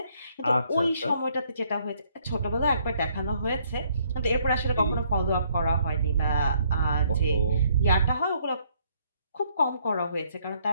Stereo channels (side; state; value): both; inverted; correlation -0.67